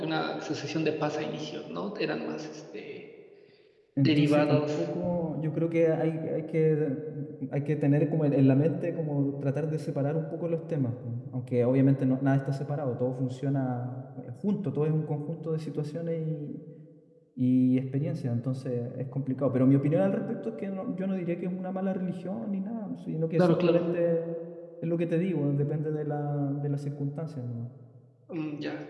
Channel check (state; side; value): identical; both; correlation 1.00